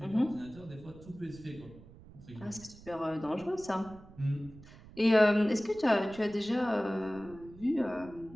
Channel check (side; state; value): right; noise; rumble, 20 dB below the sound